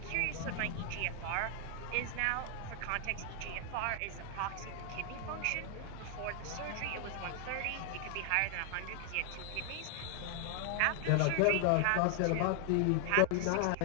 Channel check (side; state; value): both; different; correlation 0.00